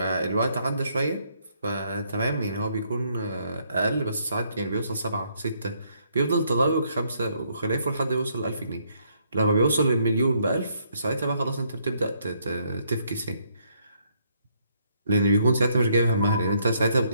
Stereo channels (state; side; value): inverted; both; correlation -0.71